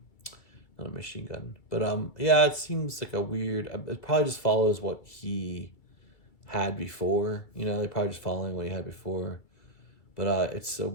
not a machine gun. But yeah, it seems like a weird. It probably just follows what he had before. You know, they're probably just following what he had before. But it's a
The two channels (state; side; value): late; right; 2.3 ms